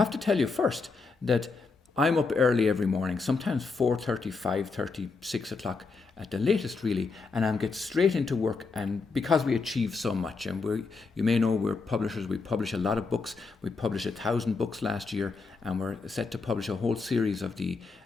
to tell you first that I'm up early every morning, sometimes 4:30, 5:30, 6 o'clock at the latest, really, and I get straight into work. And because we achieve so much, and you may know we're publishers, we publish a lot of books. We published 1,000 books last year, and we're set to publish a whole series of the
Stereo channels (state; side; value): quieter; right; 4.3 dB